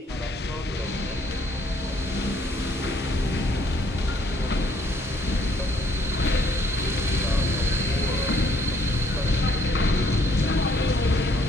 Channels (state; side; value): normal; both; correlation 0.66